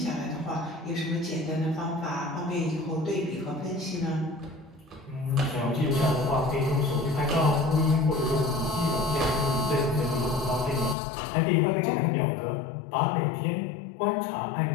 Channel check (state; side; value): drops out; right; at 11.0 s